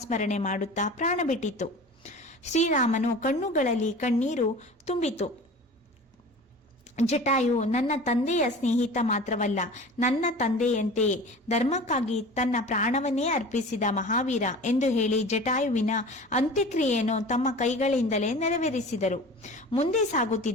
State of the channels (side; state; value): both; normal; correlation 0.38